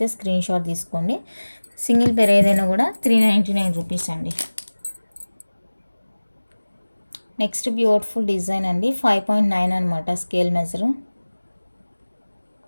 స్క్రీన్ షాట్ తీసుకోండి. సింగిల్ పేర్ ఏదైనా కూడా 399 రూపీస్ అండి. నెక్స్ట్ బ్యూటిఫుల్ డిజైన్ అండి. 5.9 అనమాట స్కేల్ మెజరు.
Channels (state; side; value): inverted; both; correlation -1.00